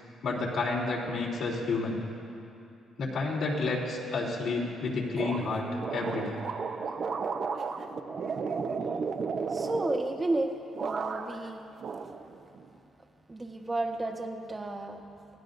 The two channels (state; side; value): normal; both; correlation 0.77